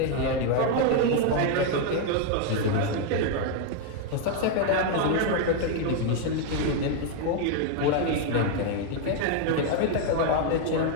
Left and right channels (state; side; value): different; both; correlation 0.00